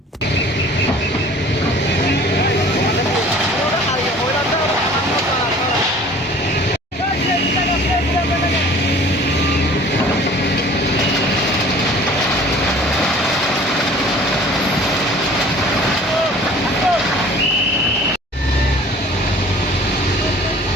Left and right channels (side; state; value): both; normal; correlation 0.49